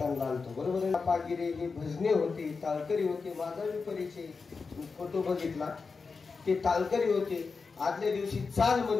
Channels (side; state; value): right; quieter; 4.7 dB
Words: आलतो, बरोबर आहे. पागिरे ही भजने होती, ताळकरी होते. माझा मी परिचय फोटो बघितला, ते ताळकरी होते. आदल्या दिवशी चाल